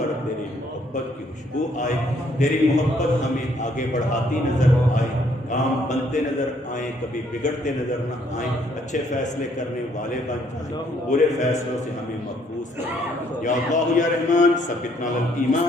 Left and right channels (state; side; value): normal; both; correlation 0.67